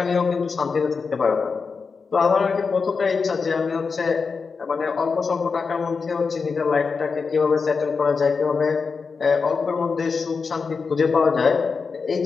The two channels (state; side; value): quieter; right; 5.0 dB